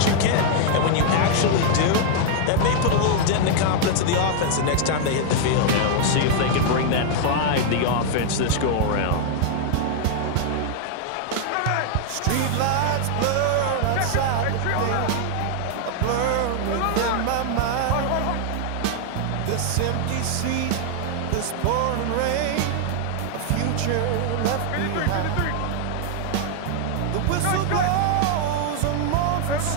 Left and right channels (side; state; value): both; different; correlation 0.00